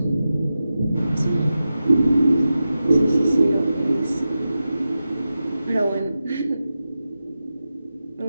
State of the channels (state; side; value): inverted; both; correlation -0.92